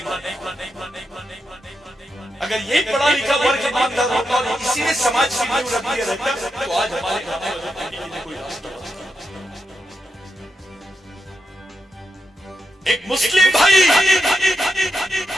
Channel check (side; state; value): both; normal; correlation 0.85